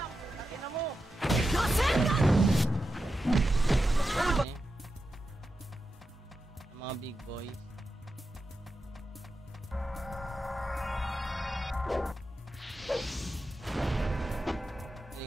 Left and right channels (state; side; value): normal; both; correlation 0.89